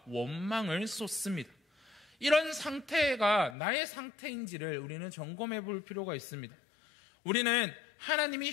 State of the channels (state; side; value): drops out; right; at 3.6 s